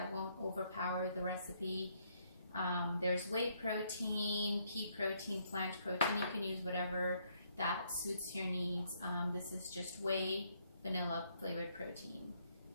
won't overpower the recipe. There's whey protein, pea protein, plant protein. You can use whatever that suits your needs. This is just whey vanilla flavored protein.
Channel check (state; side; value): inverted; both; correlation -0.71